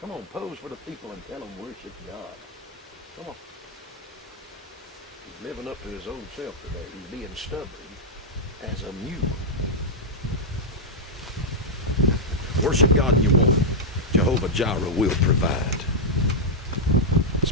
Come on, pose for the people and tell them worship God. Come on. He's living up to his old self today. He's being stubborn as a mule. Worship God in your want. Jehovah-jireh will provide.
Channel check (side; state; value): both; normal; correlation -0.04